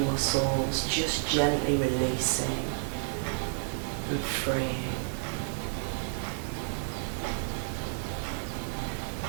muscles just gently releasing and freeing.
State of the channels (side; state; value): left; silent; digital silence